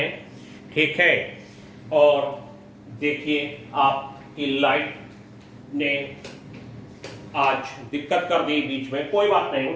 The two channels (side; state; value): both; identical; correlation 1.00